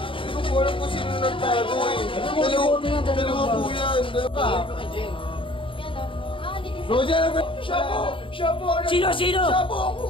ko po alam kung sino nagtago eh. Dalawa po yan. Roger, siya po! Siya po! Sino? Siya po ang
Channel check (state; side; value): late; right; 0.25 ms